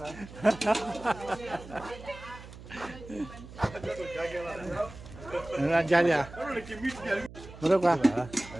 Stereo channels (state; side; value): noise; right; hum, 16 dB below the sound